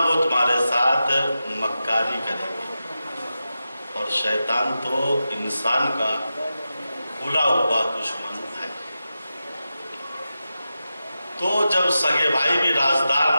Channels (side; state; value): both; inverted; correlation -0.91